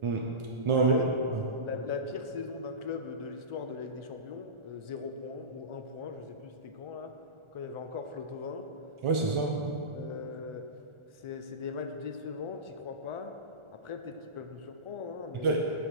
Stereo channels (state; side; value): late; left; 1.4 ms